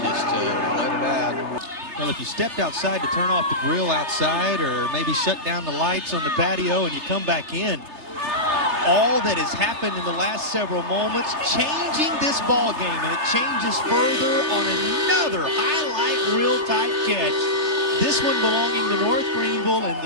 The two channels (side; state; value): left; late; 3.3 ms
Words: just let it out. Well, if you stepped outside to turn off the grill outside or maybe shut down the lights on the patio and you come back in, all that has happened in the last several moments, changing this ball game, and it changes further on another highlight reel type catch. This one belonging to North Greenville in